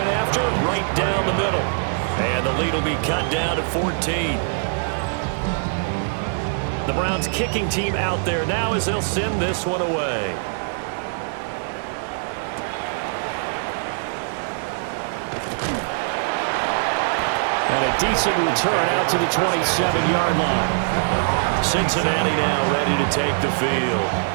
after, right down the middle. And the lead will be cut down to 14. The Browns kicking team out there now as they'll send this one away. And a decent return out to the 27-yard line. Cincinnati now ready to take the field.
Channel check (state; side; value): silent; left; digital silence